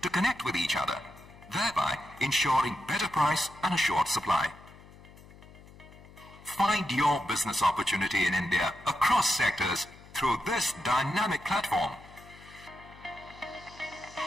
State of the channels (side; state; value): left; noise; hum, 21 dB below the sound